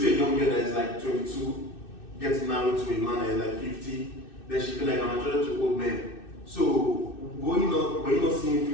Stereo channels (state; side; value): late; right; 2.6 ms